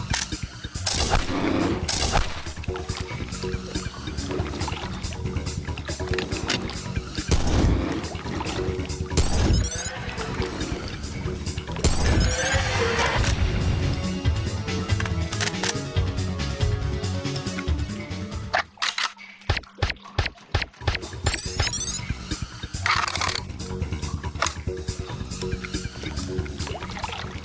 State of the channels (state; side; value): identical; both; correlation 1.00